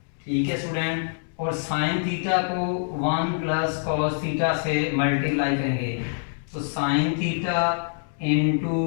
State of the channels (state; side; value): silent; right; digital silence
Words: ठीक है स्टूडेंट। और साइन थीटा को 1 प्लस कॉस थीटा से मल्टीप्लाई करेंगे, तो sine theta into